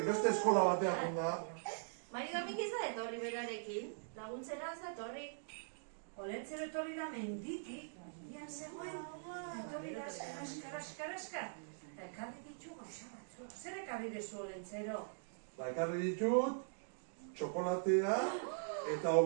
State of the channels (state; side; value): silent; left; digital silence